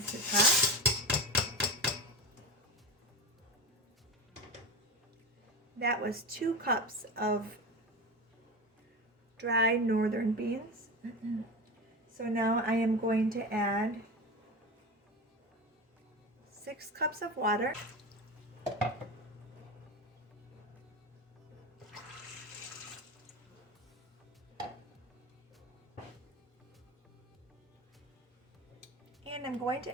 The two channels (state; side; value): normal; both; correlation 0.23